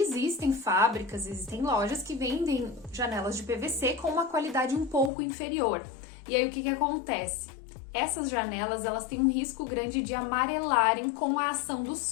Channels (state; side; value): drops out; right; at 5.1 s